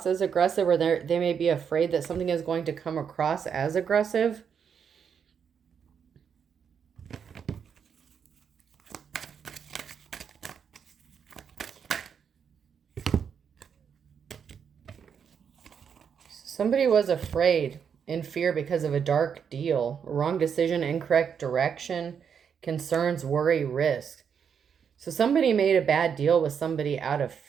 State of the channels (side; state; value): left; quieter; 7.2 dB